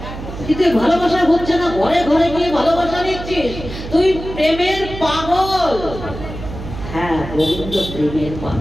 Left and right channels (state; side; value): noise; right; hum, 10 dB below the sound